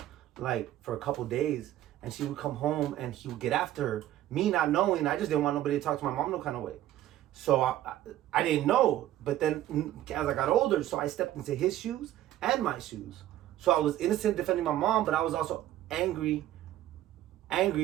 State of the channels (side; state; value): left; quieter; 13.4 dB